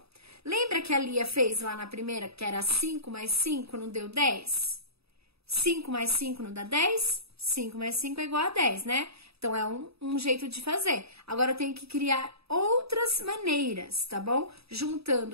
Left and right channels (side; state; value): left; late; 0.78 ms